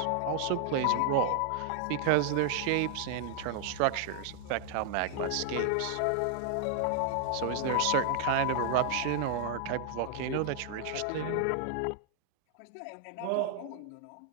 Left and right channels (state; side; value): different; both; correlation 0.00